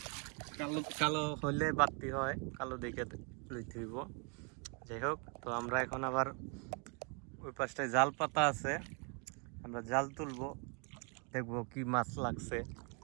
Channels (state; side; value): quieter; left; 35.8 dB